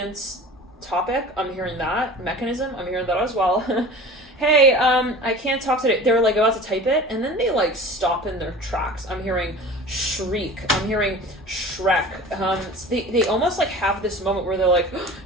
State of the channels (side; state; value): both; normal; correlation 0.39